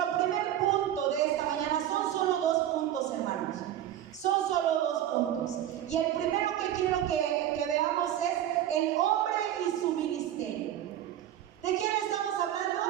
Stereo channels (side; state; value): left; quieter; 11.7 dB